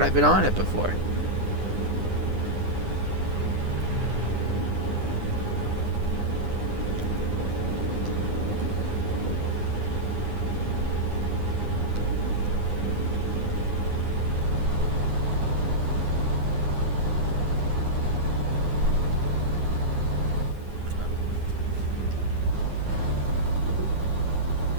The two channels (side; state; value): left; late; 9.8 ms